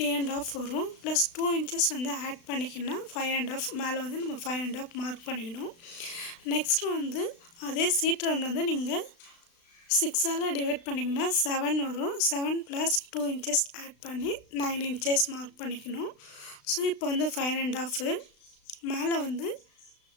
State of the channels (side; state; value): right; late; 36 ms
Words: வரும். + 2 inches வந்து ஆட் பண்ணிக்கினா 5.5 மேல வந்து நம்ம 5.5 மார்க் பண்ணிக்கணும். நெக்ஸ்ட் வந்து அதே சீட் ரவுண்ட் வந்து நீங்க 6 ஆல டிவைட் பண்ணீங்கன்னா 7 வரும். 7 + 2 inches ஆட் பண்ணி 9 inches மார்க் பண்ணிக்கணும். சோ இப்போ வந்து 5.5 மேல வந்து